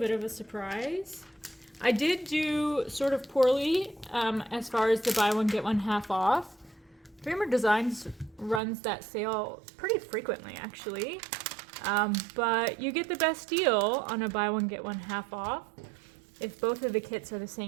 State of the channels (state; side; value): drops out; left; at 8.6 s